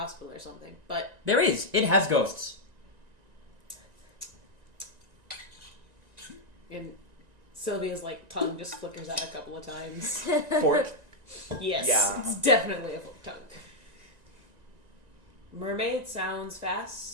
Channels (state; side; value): late; left; 1.9 ms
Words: or something. But There is. It has ghosts. and Sylvia's like tongue just flickers out a couple of times. Fork? Yes, Yeah. it's definitely a forked tongue. Mermaid sounds